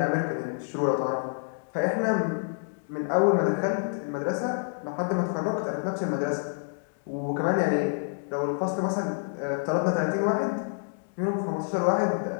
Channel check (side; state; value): right; silent; digital silence